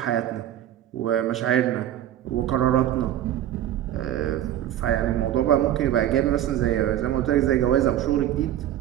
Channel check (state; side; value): quieter; left; 11.9 dB